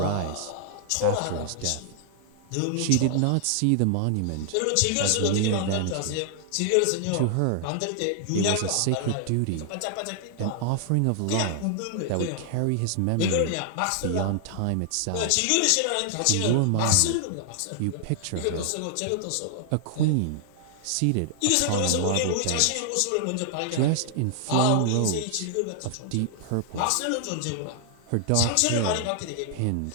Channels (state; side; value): different; both; correlation 0.00